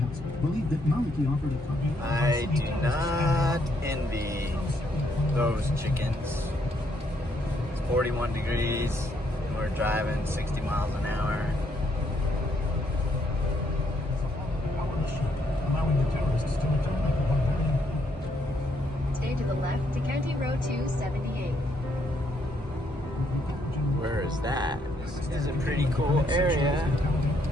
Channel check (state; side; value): normal; both; correlation 0.72